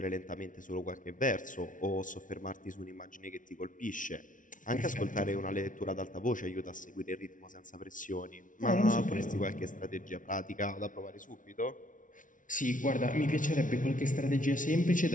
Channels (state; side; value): late; right; 0.38 ms